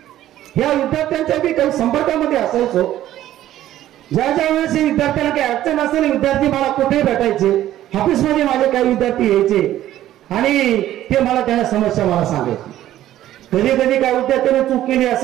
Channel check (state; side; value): quieter; left; 13.1 dB